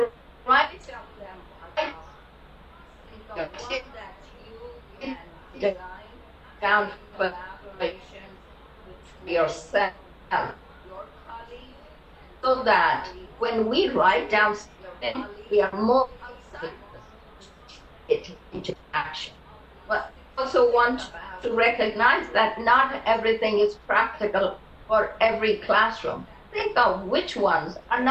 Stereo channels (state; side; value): identical; both; correlation 1.00